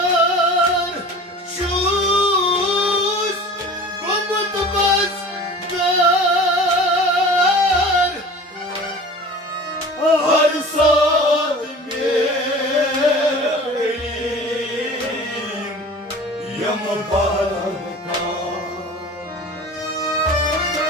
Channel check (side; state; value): both; normal; correlation 0.40